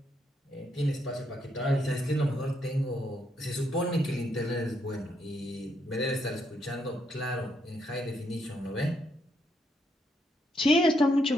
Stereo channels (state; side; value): normal; both; correlation 0.76